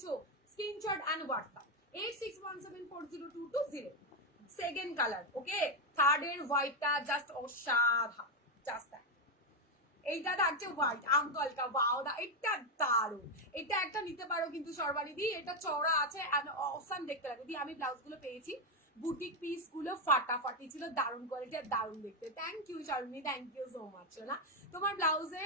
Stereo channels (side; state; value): both; normal; correlation 0.05